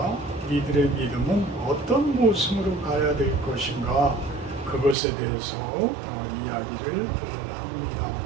우리들의 믿음은 어떤 모습으로 가야 될 것인가 그것에 대해서 이야기를 합니다.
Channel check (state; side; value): drops out; left; at 5.0 s